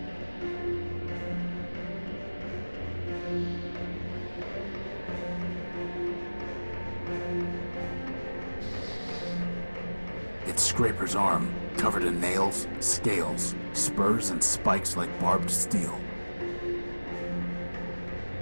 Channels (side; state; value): both; inverted; correlation -1.00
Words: It's Scraper's arm, covered in nails, scales, spurs, and spikes like barbed steel.